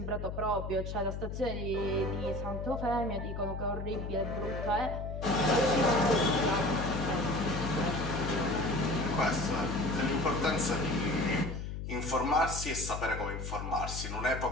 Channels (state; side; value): noise; left; hum, 6 dB below the sound